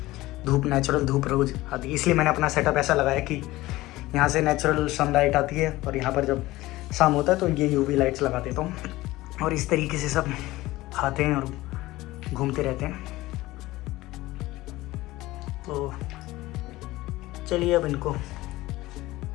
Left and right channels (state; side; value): quieter; right; 18.2 dB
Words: धूप, नेचुरल धूप रोज आती है, इसलिए मैंने अपना सेटअप ऐसा लगाया कि यहाँ से नेचुरल सनलाइट आती है, और यहाँ पर जब शाम होता है तो ये यूवी लाइट्स लगा देता हूँ, और इस तरीके से सब खाते हैं और घूमते रहते हैं। तो चलिए अब इनको